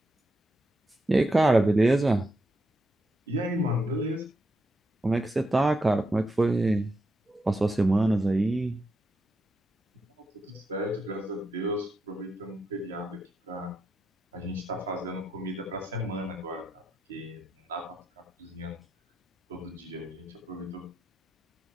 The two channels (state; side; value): normal; both; correlation 0.84